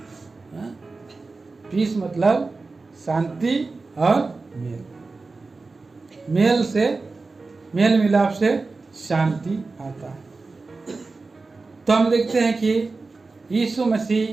पीस मतलब शांति और मेल, मेल से मेल मिलाप से शांति आता है। तो हम देखते हैं कि यीशु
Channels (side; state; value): left; quieter; 3.8 dB